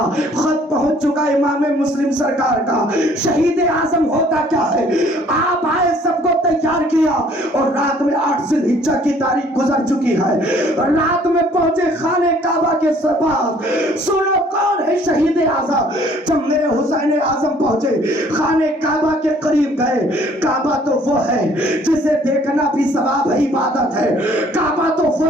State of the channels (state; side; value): normal; both; correlation 0.58